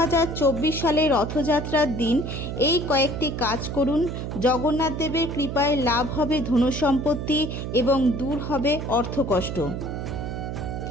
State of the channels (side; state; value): right; noise; hum, 5 dB below the sound